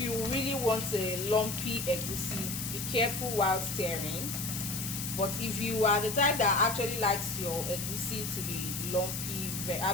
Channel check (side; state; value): left; noise; hiss, 5 dB below the sound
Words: really want a lumpy egusi, be careful while stirring. But if you are the type that actually likes your egusi to be lumpy,